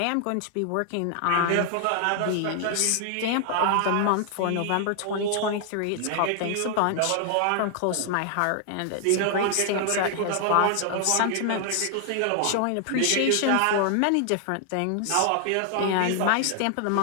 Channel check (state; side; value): different; both; correlation 0.00